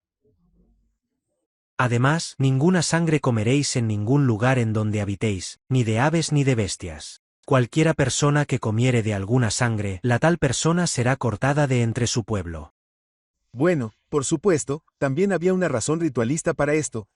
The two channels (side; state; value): both; identical; correlation 1.00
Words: Además, ninguna sangre comeréis en ningún lugar en donde habitéis, ni de aves ni de bestias. Cualquiera persona que comiere de alguna sangre, la tal persona será cortada de entre su pueblo. Bueno, por supuesto, también había una razón ritualista para esto,